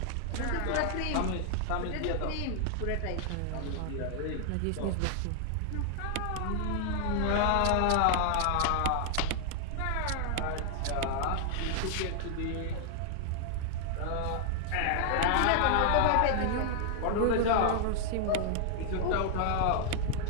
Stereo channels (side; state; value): both; different; correlation 0.00